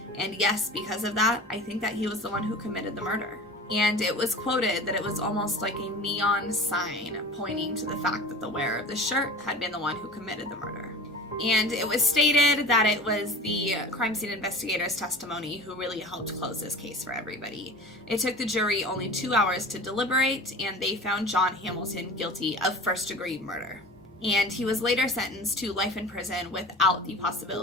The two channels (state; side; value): normal; both; correlation 0.37